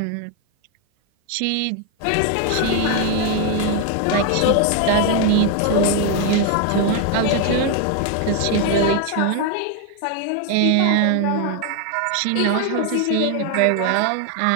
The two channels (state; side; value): different; both; correlation 0.01